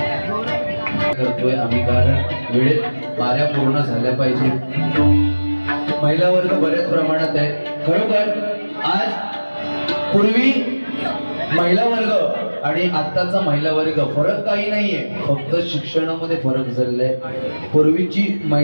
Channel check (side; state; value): both; inverted; correlation -1.00